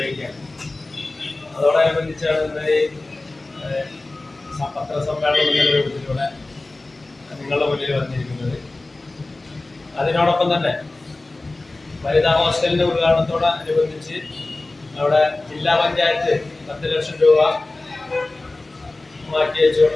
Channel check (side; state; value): right; quieter; 3.0 dB